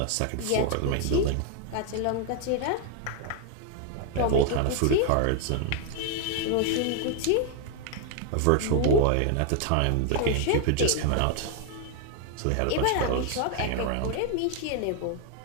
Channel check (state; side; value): different; both; correlation 0.01